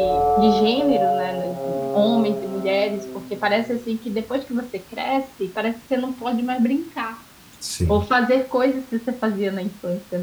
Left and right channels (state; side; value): identical; both; correlation 1.00